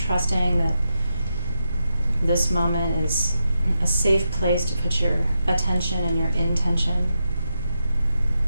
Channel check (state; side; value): inverted; both; correlation -0.86